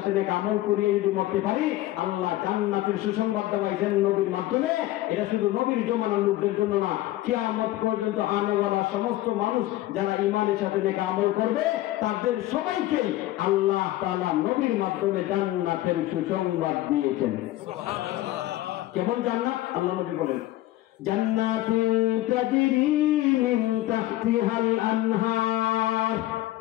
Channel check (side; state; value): right; quieter; 16.0 dB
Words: নেক আমল করিয়ে যদি মরতে পারি, আল্লাহ জান্নাতের সুসংবাদ দেওয়াইছেন নবীর মাধ্যমে। এটা শুধু নবীর জমানার লোকদের জন্য না, কিয়ামত পর্যন্ত আনেওয়ালা সমস্ত মানুষ যারা ইমানের সাথে নেক আমল করবে, তাদের সবাইকে আল্লাহ তাআলা নবীর মাধ্যমে জান্নাতের সুসংবাদ দিয়েছেন। সুবহানাল্লাহ। কেমন জান্নাত? আল্লাহ নবী বলেন জান্নাতুন তাজরি মিন তাহতিহাল আনহার,